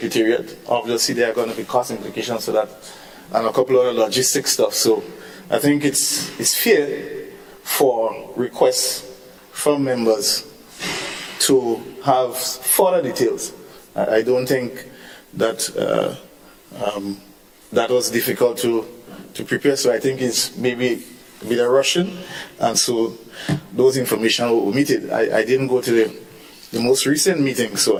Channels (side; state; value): both; identical; correlation 1.00